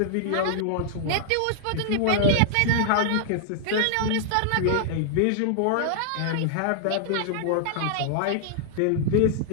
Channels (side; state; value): both; different; correlation -0.01